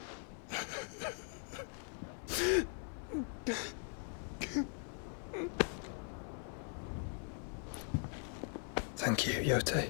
Thank you, Yote.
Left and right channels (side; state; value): right; silent; 51 dB below the other